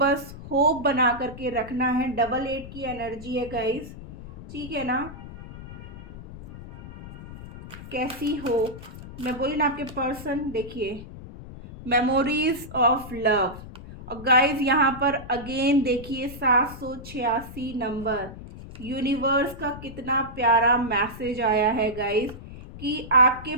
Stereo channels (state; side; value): noise; left; rumble, 14 dB below the sound